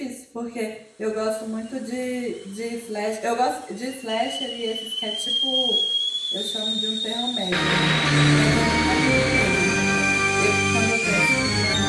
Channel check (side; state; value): both; identical; correlation 1.00